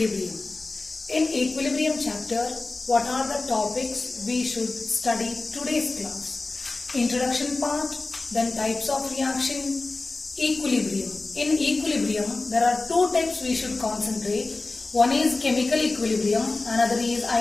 In Equilibrium chapter, what are the topics we should study today's class? Introduction part, then types of reaction, equilibrium. In equilibrium, there are two types we should concentrate. One is chemical equilibrium, another is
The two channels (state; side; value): quieter; right; 3.4 dB